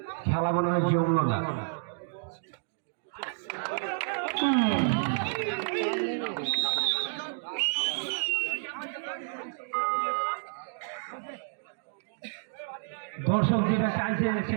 খেলা মনে হয় জমলো না দর্শক যেটা চাইছে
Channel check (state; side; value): silent; left; digital silence